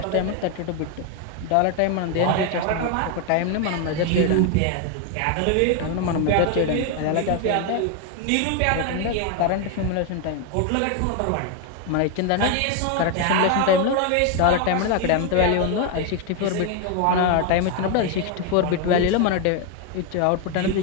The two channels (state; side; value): different; both; correlation 0.01